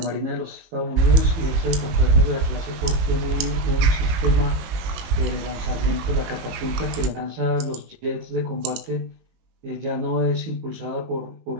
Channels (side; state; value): left; late; 19 ms